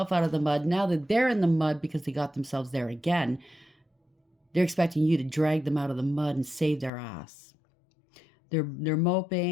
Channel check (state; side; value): drops out; right; at 6.9 s